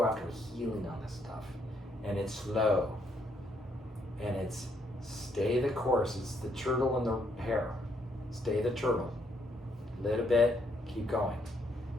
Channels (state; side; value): normal; both; correlation 0.72